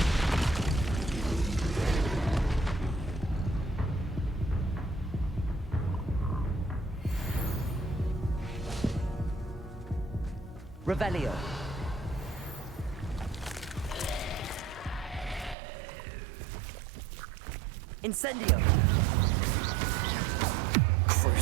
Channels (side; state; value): left; drops out; at 15.6 s